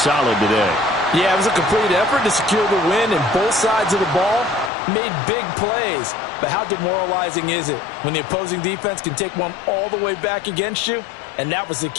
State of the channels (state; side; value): drops out; right; at 4.7 s